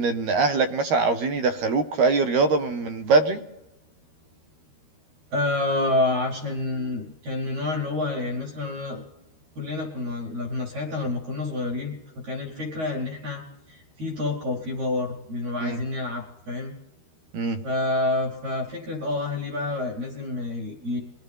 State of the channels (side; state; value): left; late; 13 ms